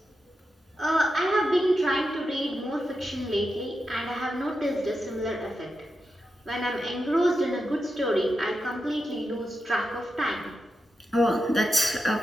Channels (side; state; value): both; normal; correlation 0.88